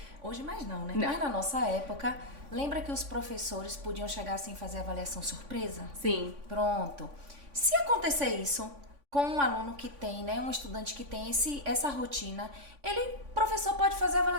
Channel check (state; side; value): late; left; 3.5 ms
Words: hoje mais não, né? Mas na nossa época, lembra que os professores podiam chegar assim e fazer avaliação surpresa? Sim. Pronto. Se acontecer isso com um aluno que tem, né, um estudante que tem essa rotina, o professor pode fazer a